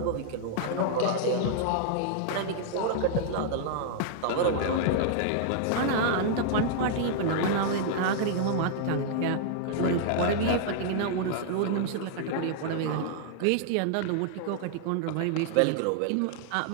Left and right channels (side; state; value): both; different; correlation -0.01